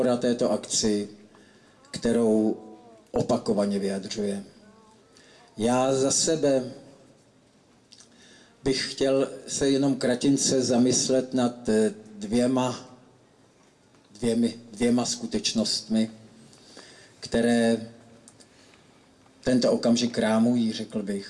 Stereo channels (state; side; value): identical; both; correlation 1.00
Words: této akci, kterou opakovaně vyjadřuje. Já za sebe bych chtěl se jenom kratince zamyslet nad dvěma skutečnostmi, které tento okamžik rámují, řekl